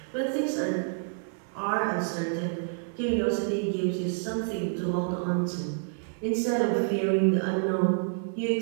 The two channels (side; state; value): left; silent; digital silence